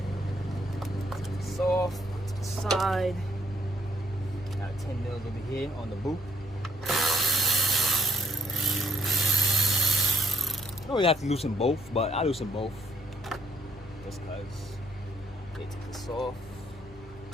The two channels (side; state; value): left; noise; hum, 20 dB below the sound